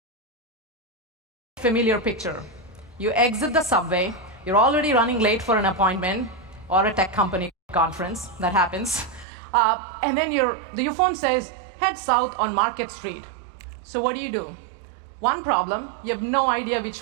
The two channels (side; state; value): left; drops out; at 9.2 s